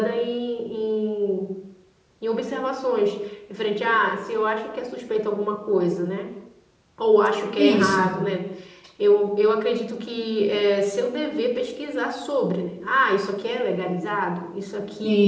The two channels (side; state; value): both; identical; correlation 1.00